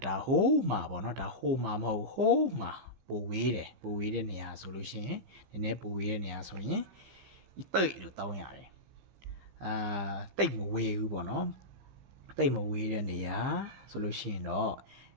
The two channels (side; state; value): left; late; 15 ms